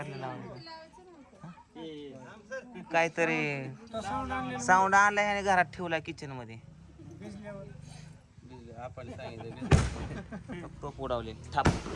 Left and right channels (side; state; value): both; identical; correlation 1.00